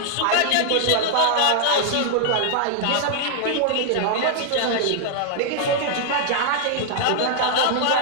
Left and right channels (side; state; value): both; different; correlation -0.01